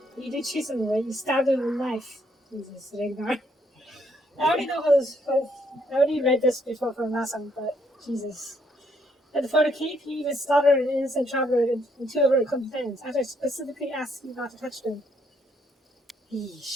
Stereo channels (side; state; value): both; normal; correlation 0.71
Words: You did chase him away. You stabbed him with a knife. Jesus, Ragnar. I already read this before from last time, but Jesus. And for the cape, you even slaughtered an innocent traveler and two of her companions, after I specifically asked you not to touch them.